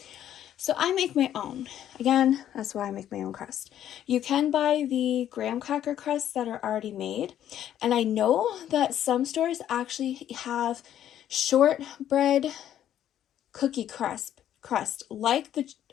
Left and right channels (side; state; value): right; quieter; 11.0 dB